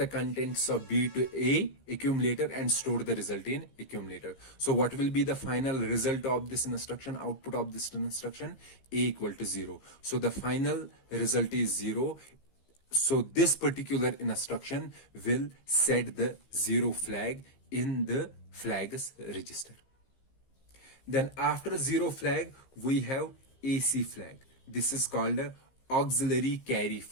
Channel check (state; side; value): late; right; 15 ms